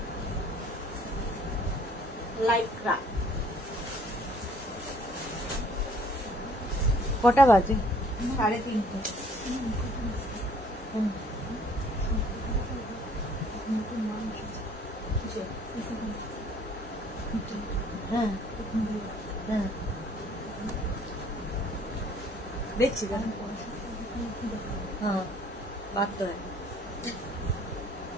Lycra. কটা বাজে? 3:30। হ্যাঁ হ্যাঁ দেখছি, হ্যাঁ বাদ তো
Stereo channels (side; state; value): both; normal; correlation 0.58